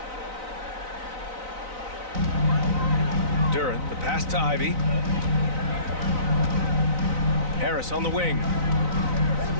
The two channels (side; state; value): left; late; 3.9 ms